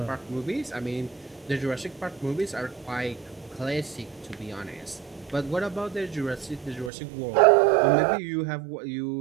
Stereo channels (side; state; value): left; drops out; at 6.9 s